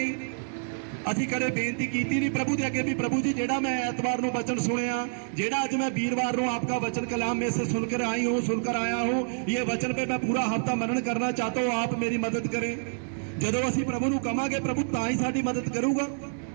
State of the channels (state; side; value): silent; left; digital silence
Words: असीं कदे बेनती कीती नहीं प्रभु दे अगे भी प्रभु जी जेड़ा मैं ऐतवार नूं वचन सुनिया, जेड़ा अज मैं वीरवार नूं आपका वचन कलाम में से सुनकर आई हूँ, सुनकर आया हूँ, ये वचन पे मैं पूरा हफ्ता मनन करना चाहता हूँ, आप मेरी मदद करें। जदों असीं प्रभु नूं कहांगे प्रभु तां ही साडी मदद करूगा।